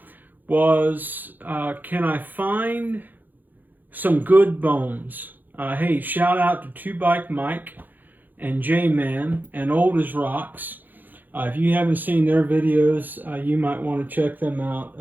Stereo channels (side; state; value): left; late; 0.086 ms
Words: was, can I find some good bones? Hey, shout out to Two Bike Mike and J-Man and Old as Rocks. If you haven't seen their videos, you might want to check them out